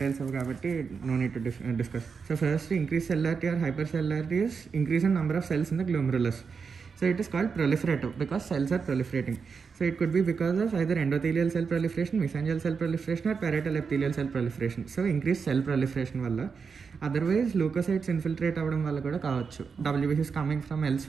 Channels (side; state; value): left; quieter; 5.6 dB